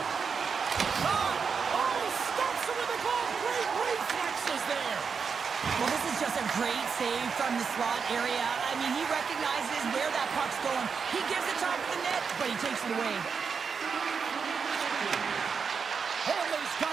Shot! Oh, he stops it with a glove. Great reflexes there. Well, this is just a great save from the slot area. I mean, he recognizes where that puck's going. He gives it top of the net, but he takes it away. Holmley's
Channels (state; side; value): quieter; left; 5.8 dB